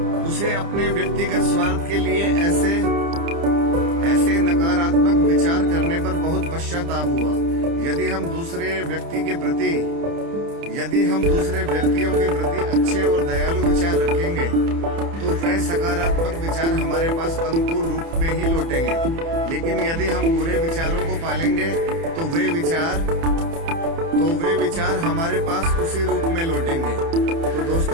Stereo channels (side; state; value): left; late; 30 ms